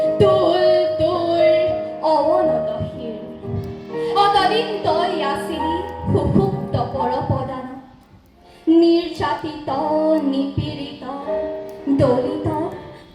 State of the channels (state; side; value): identical; both; correlation 1.00